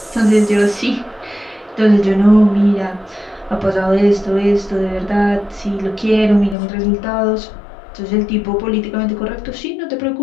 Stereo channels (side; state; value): right; drops out; at 6.6 s